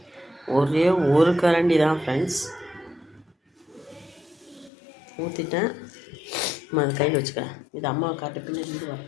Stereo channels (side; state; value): right; drops out; at 4.7 s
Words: ஒரே ஒரு கரண்டி தான் ஃப்ரெண்ட்ஸ் ஊற்றிட்டேன். அதை கையில் வச்சுக்கிறேன். இது அம்மாவை காட்டு, பின்னாடி இது வர